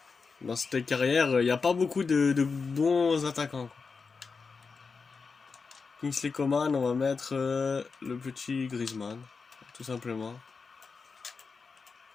Dans cette carrière, il n'y a pas beaucoup de bons attaquants, quoi. Kingsley Coman, on va mettre le petit Griezmann, tout simplement.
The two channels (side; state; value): right; quieter; 4.9 dB